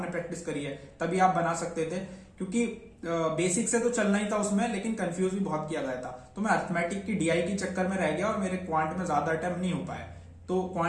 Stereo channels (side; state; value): both; identical; correlation 1.00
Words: प्रैक्टिस करी है, तभी आप बना सकते थे। क्योंकि बेसिक से तो चलना ही था उसमें, लेकिन कंफ्यूज भी बहुत किया गया था। तो मैं अर्थमेटिक की डीआई के चक्कर में रह गया और मेरे क्वांट में ज्यादा अटेम्प्ट नहीं हो पाए। तो